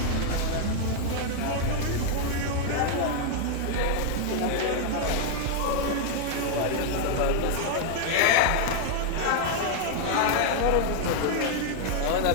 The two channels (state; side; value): different; both; correlation 0.00